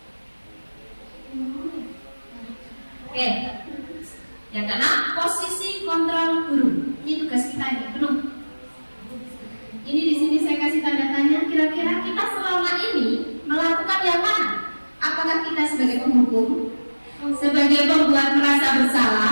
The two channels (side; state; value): both; inverted; correlation -1.00